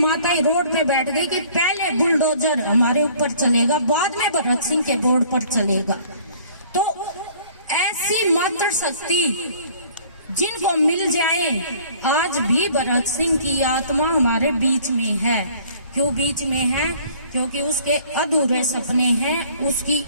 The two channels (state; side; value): inverted; both; correlation -0.54